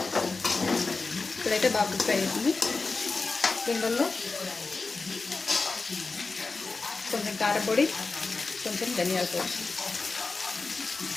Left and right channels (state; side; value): quieter; right; 4.0 dB